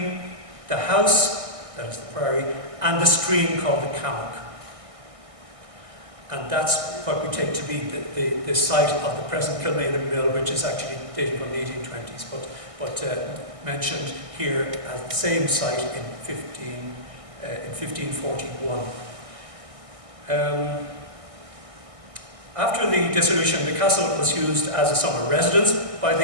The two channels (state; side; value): late; left; 1.6 ms